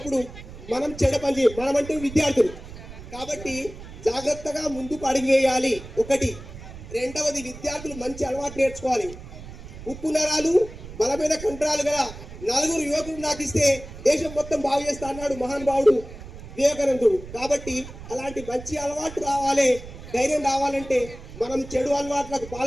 మనం చెడ పని చేయం. మనం అంటే విద్యార్థులు కాబట్టి జాగ్రత్తగా ముందుకు అడుగు వేయాలి. ఒకటి. రెండవది, విద్యార్థులు మంచి అలవాటు నేర్చుకోవాలి. ఉప్పు నరాలు బలమైన కండరాలు గల 4 యువకులు నాకు ఇస్తే దేశం మొత్తం బాగు చేస్తా అన్నాడు మహానుభావుడు వివేకానందుడు. కాబట్టి అలాంటి మంచి అలవాటు రావాలి, ధైర్యం రావాలంటే మనం చెడు అలవాట్లకు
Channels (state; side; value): noise; right; rumble, 14 dB below the sound